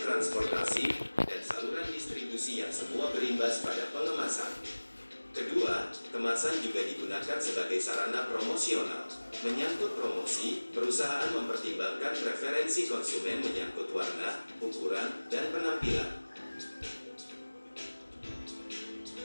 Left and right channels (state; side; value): inverted; both; correlation -1.00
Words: dan saluran distribusi yang semua berimbas pada pengemasan. Kedua, kemasan juga digunakan sebagai sarana promosional. Menyangkut promosi, perusahaan mempertimbangkan preferensi konsumen menyangkut warna, ukuran, dan penampilan.